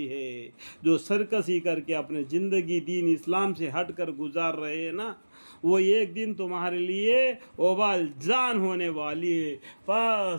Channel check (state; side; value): inverted; both; correlation -1.00